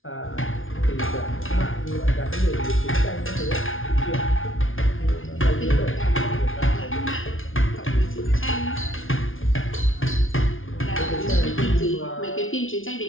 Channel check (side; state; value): right; late; 0.58 ms